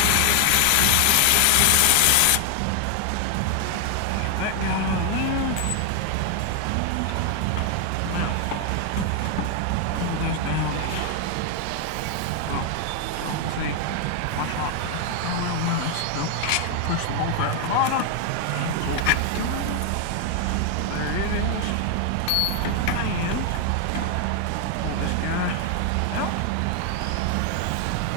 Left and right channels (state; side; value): different; both; correlation 0.00